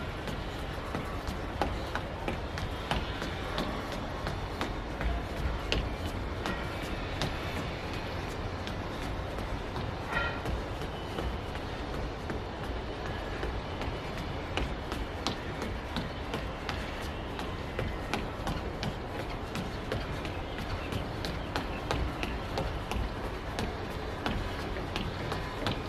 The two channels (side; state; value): both; identical; correlation 1.00